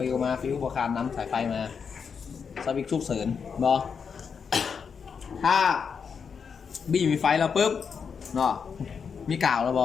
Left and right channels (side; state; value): right; quieter; 6.3 dB